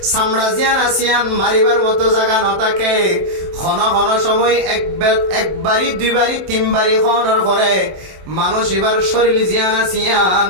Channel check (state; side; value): late; left; 27 ms